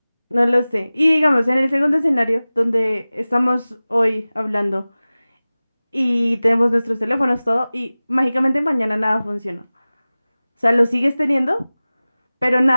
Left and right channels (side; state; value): both; inverted; correlation -0.98